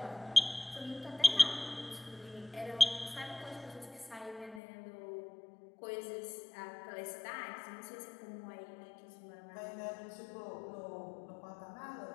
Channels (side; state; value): right; drops out; at 4.6 s